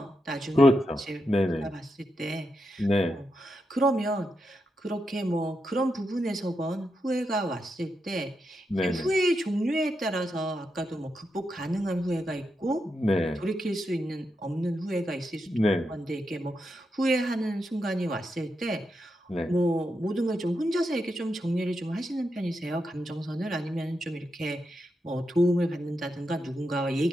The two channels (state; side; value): normal; both; correlation 0.85